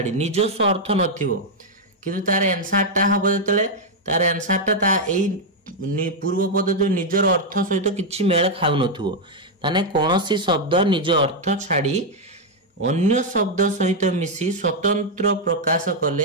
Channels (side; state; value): both; normal; correlation 0.00